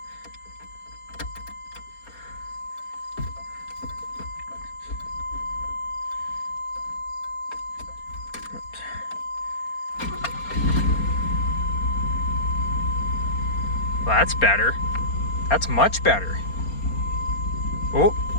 Well, that's better. That's much better. Oh.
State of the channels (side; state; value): right; late; 4.3 ms